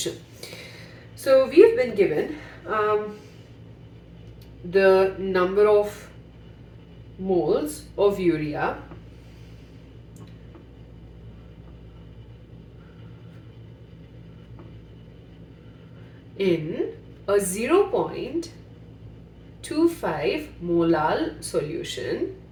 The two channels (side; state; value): both; identical; correlation 1.00